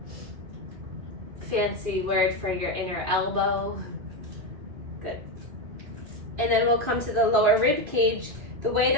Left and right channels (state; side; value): late; left; 2.5 ms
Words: Fancy word for your inner elbow. Good. And then we'll come to the lower rib cage. The way